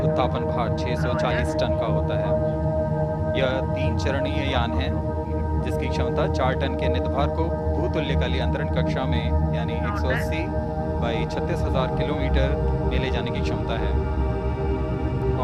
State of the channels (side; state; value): both; identical; correlation 1.00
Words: भार 640 टन का होता है। यह 3 चरणीय यान है जिसकी क्षमता 4 टन के नितभार को भूतुल्यकालीय अंतरण कक्षा में यानी 180 बाई 36,000 किलोमीटर में ले जाने की क्षमता है